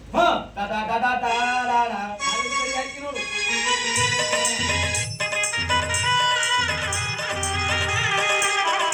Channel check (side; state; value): both; identical; correlation 1.00